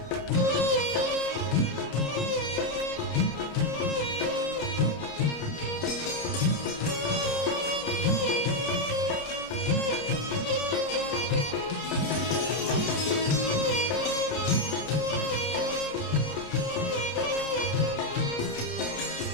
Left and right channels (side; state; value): right; late; 30 ms